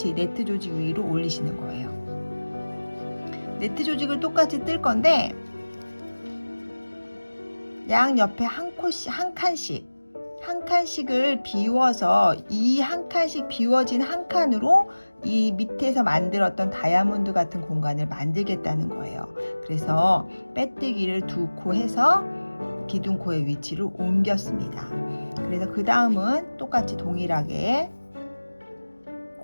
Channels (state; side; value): inverted; both; correlation -1.00